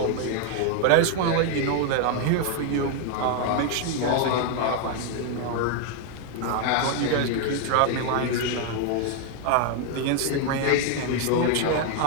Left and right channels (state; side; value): different; both; correlation 0.00